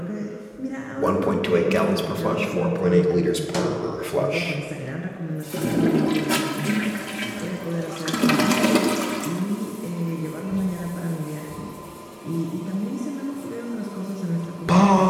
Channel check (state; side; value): identical; both; correlation 1.00